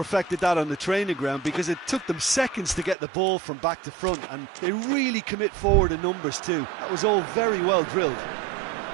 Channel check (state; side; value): drops out; left; at 3.0 s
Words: that on the training ground because it took them seconds to get the ball from back to front, and they really commit forward in numbers too. That was all very well drilled.